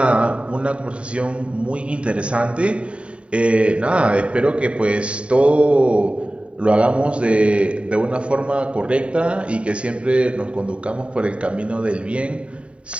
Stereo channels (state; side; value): late; left; 0.060 ms